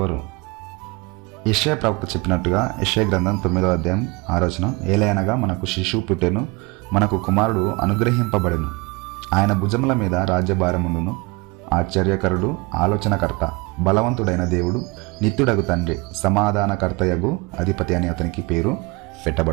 యెషయా ప్రవక్త చెప్పినట్టుగా యెషయా గ్రంథం 9వ అధ్యాయం 6వ వచనం, ఏలయనగా మనకు శిశువు పుట్టెను, మనకు కుమారుడు అనుగ్రహింపబడెను, ఆయన భుజముల మీద రాజ్యభారముండును, ఆశ్చర్యకరుడు, ఆలోచనకర్త, బలవంతుడైన దేవుడు, నిత్యుడగు తండ్రి, సమాధానకర్తయగు అధిపతి అని అతనికి పేరు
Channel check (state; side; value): quieter; left; 25.2 dB